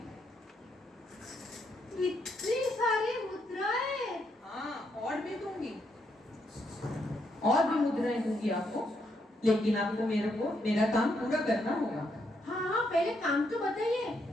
इतनी सारी मुद्राएं? हाँ, और भी दूंगी, और भी मुद्राएं दूंगी आपको, लेकिन आपको मेरा काम पूरा करना होगा। हाँ, पहले काम तो बताइए।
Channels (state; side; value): normal; both; correlation 0.77